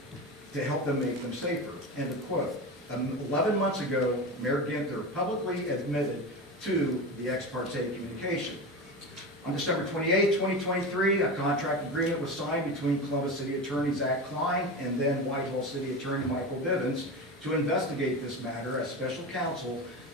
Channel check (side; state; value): both; normal; correlation 0.24